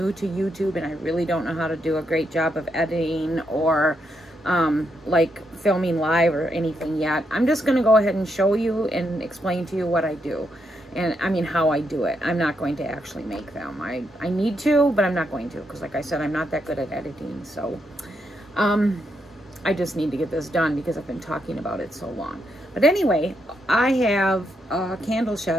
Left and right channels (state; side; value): normal; both; correlation 0.80